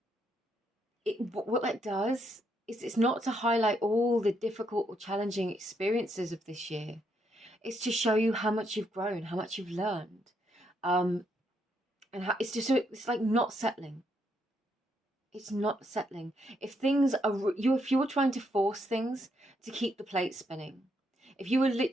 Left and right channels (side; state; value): both; normal; correlation 0.76